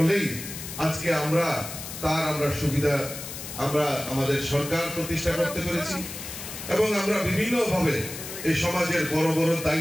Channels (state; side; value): noise; left; hiss, 9 dB below the sound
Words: আজকে আমরা সুবিধা আমরা আমাদের সরকার প্রতিষ্ঠা করতে পেরেছি এবং আমরা বিভিন্নভাবে এই সমাজের বড় বড়